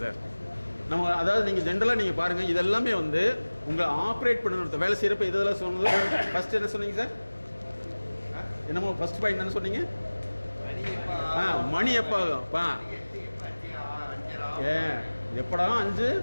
சார். நம்ம அதாவது நீங்கள் ஜென்ரலாக நீங்கள் பாருங்கள், இதெல்லாமே வந்து உங்களை ஆப்ரேட் பண்ணணும். வேலை செய்கிறப்ப இதெல்லாம் சொன்னது ஃபஸ்ட்டு என்ன சொன்னீங்க சார்? என்னமோ ஃபஸ்ட் பாயிண்ட் என்ன சொன்னீங்க? மணி எப்போ ஆகும்? எப்படா 5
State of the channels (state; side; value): inverted; both; correlation -1.00